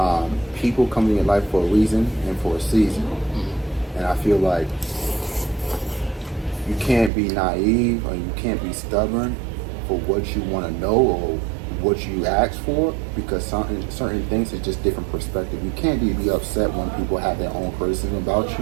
People come in your life for a reason and for a season. And I feel like you can't be naive or you can't be stubborn for what you want to know or what you ask for, because certain things is just different perspective. You can't be upset when people have their own criticism about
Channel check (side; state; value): left; drops out; at 7.1 s